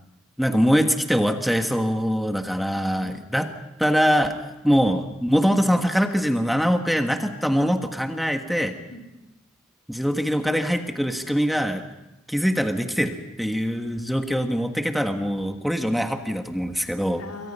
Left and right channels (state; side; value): normal; both; correlation 0.95